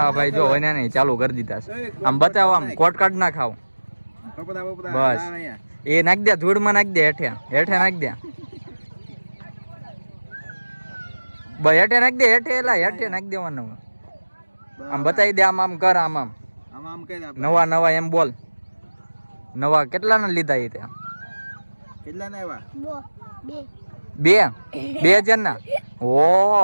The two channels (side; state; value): both; inverted; correlation -1.00